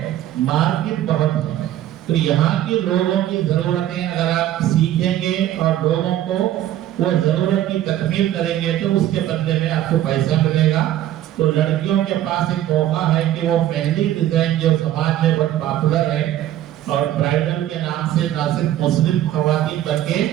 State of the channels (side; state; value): left; quieter; 12.7 dB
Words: मार्केट बहुत है। तो यहाँ के लोगों की जरूरतें अगर आप सीखेंगे और लोगों को वो जरूरत की तकमील करेंगे तो उसके बदले में आपको पैसा मिलेगा। तो लड़कियों के पास एक मौका है कि वो मेहंदी डिजाइन जो समाज में बहुत पॉपुलर है और ब्राइडल के नाम से ना सिर्फ मुस्लिम खवातीन बल्कि